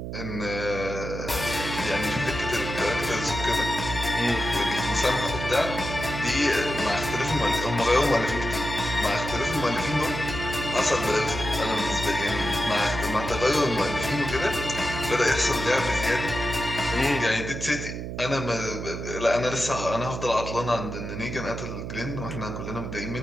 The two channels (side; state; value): right; noise; hum, 6 dB below the sound